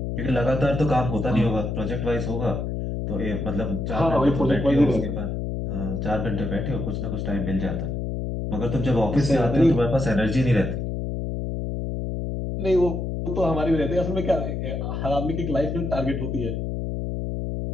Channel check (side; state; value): left; noise; hum, 3 dB below the sound